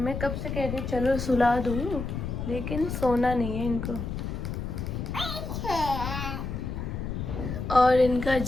कब से कह रही चलो सुला दूँ, लेकिन सोना नहीं है इनको। और इनका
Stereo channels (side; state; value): left; noise; rumble, 4 dB below the sound